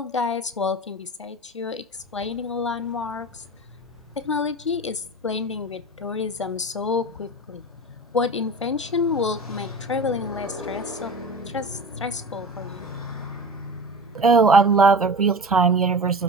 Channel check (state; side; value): normal; both; correlation 0.32